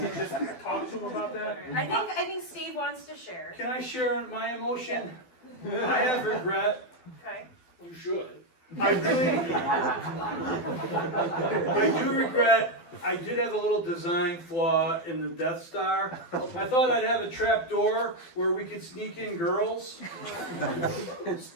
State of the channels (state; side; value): late; right; 12 ms